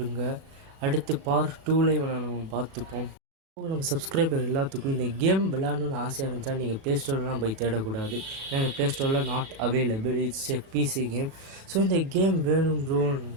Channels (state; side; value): late; left; 37 ms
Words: அடுத்து பார்ட் 2ல் நம்ம பார்த்துப்போம். நம்ம சப்ஸ்கிரைபர் எல்லாத்துக்கும் இந்த கேம் விளையாடணுன்னு ஆசையாக இருந்துச்சா நீங்கள் ப்ளே ஸ்டோர்லாம் போய் தேடக்கூடாது. ஏன்னா இந்த ப்ளே ஸ்டோரில் not available. It's a PC game. So இந்த கேம் வேணும் ப்ரோ